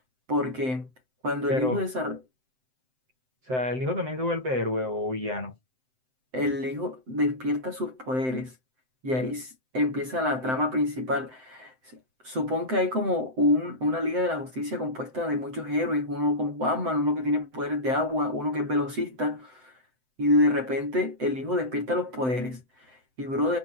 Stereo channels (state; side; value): late; left; 7.8 ms